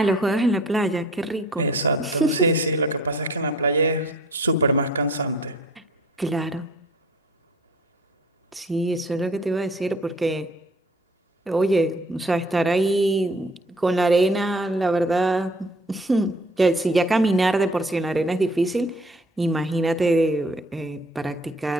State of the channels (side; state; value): both; normal; correlation 0.53